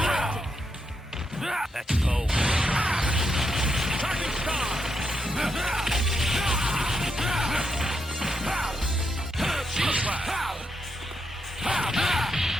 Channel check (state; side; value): normal; both; correlation 0.82